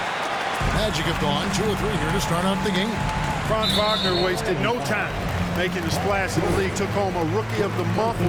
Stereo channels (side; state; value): both; identical; correlation 1.00